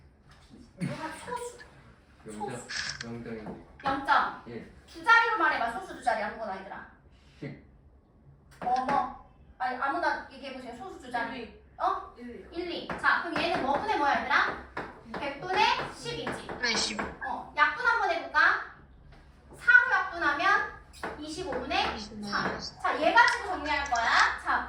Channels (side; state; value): both; identical; correlation 1.00